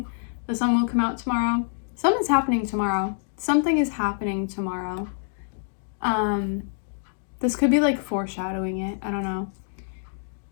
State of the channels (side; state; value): right; silent; digital silence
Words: The Sun Will Come Out Tomorrow. Something's happening tomorrow. Something is happening tomorrow. This could be like foreshadowing it. I don't know.